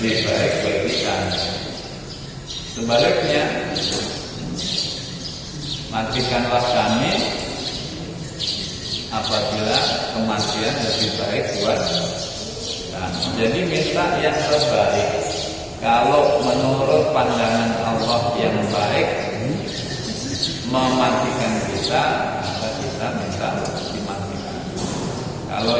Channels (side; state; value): both; identical; correlation 1.00